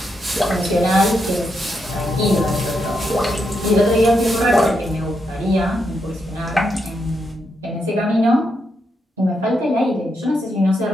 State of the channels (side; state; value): both; normal; correlation 0.82